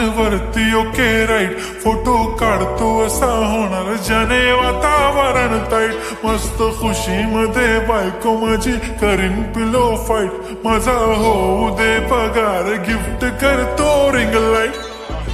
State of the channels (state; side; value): identical; both; correlation 1.00